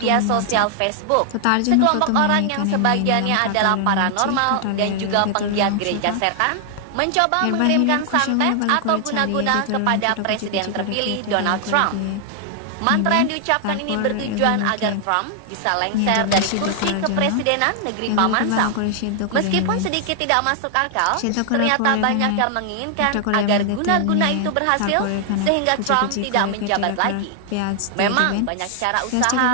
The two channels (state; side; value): different; both; correlation 0.00